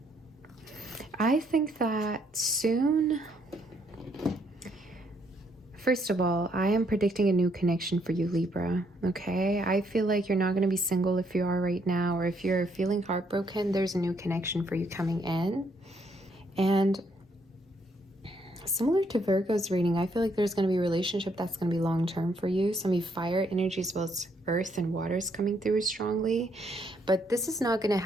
I think that soon, first of all, I am predicting a new connection for you, Libra, okay? I feel like you're not going to be single if you are right now, or if you're feeling heartbroken, there's a new connection for you coming in. And similar to Virgo's reading, I feel like there's going to be a relationship that's going to be long-term for you. Some of you fire energy as well as earth and water is coming through strongly. But this is not going to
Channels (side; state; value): both; normal; correlation 0.71